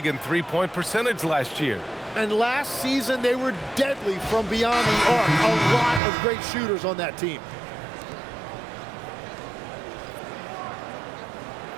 in three-point percentage last year. And last season, they were deadly from beyond the arc. A lot of great shooters on that team.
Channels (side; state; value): left; drops out; at 6.0 s